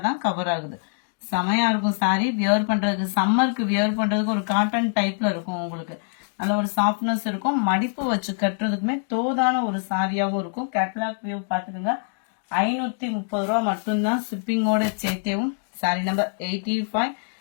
தான் கவர் ஆகுது. செமையா இருக்கும் சாரி. வியர் பண்றதுக்கு, சம்மருக்கு வியர் பண்றதுக்கு ஒரு காட்டன் டைப்ல இருக்கும். உங்களுக்கு நல்ல ஒரு சாஃப்ட்னஸ் இருக்கும். மடிப்பு வச்சு கட்டுறதுக்குமே தோதான ஒரு சாரியாகவும் இருக்கும். கேட்லாக் வியூ பார்த்துக்கோங்க. 530 ரூபா மட்டும்தான் ஷிப்பிங்கோட சேர்த்தேவும். சாரி நம்பர் 85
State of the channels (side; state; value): right; silent; 62 dB below the other